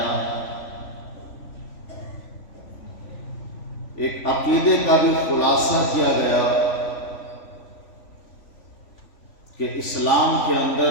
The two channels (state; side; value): late; right; 3.4 ms